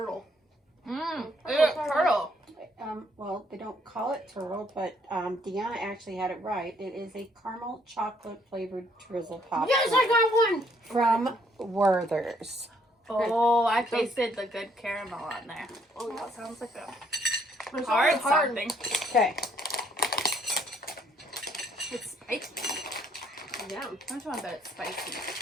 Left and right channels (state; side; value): normal; both; correlation 0.67